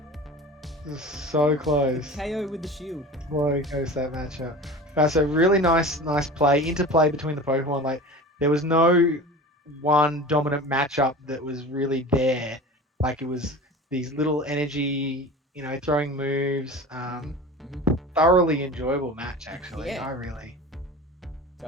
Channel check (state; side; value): normal; both; correlation 0.36